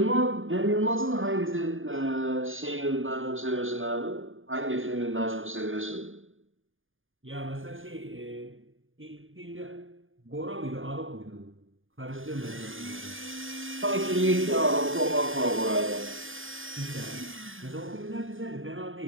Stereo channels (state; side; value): late; left; 0.58 ms